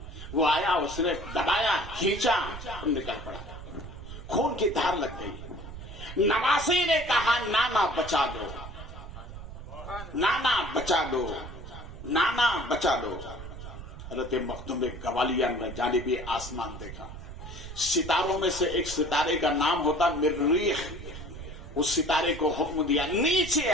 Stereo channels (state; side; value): noise; right; rumble, 11 dB below the sound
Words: وہ آیا، اس نے دبایا، کھینچا اور نکل پڑا. خون کی دھار لگ گئی. نواسی نے کہا نانا بچا دو، نانا بچا دو، نانا بچا دو. حضرت مخدوم گوالیار نے جانبی آسمان دیکھا. ستاروں میں سے ایک ستارے کا نام ہوتا مریخ. اس ستارے کو حکم دیا نیچے